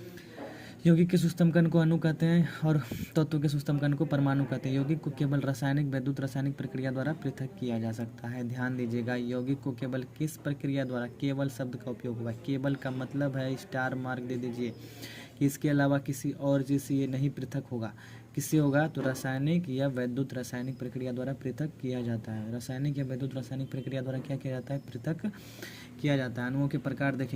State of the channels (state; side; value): identical; both; correlation 1.00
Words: यौगिक के सूक्ष्म कण को अणु कहते हैं और तत्व के सूक्ष्म कण को परमाणु कहते हैं। यौगिक को केवल रासायनिक, वैद्युत रासायनिक प्रक्रिया द्वारा पृथक किया जा सकता है। ध्यान दीजिएगा, यौगिक को केवल किस प्रक्रिया द्वारा, केवल शब्द का उपयोग हुआ है। केवल का मतलब है स्टार मार्क दे दीजिए कि इसके अलावा किसी और चीज़ से ये नहीं पृथक होगा। किससे होगा, तो रासायनिक या वैद्युत रासायनिक प्रक्रिया द्वारा पृथक किया जाता है। रासायनिक या वैद्युत रासायनिक प्रक्रिया द्वारा क्या किया जाता है, पृथक किया जाता है। अणुओं के प्रकार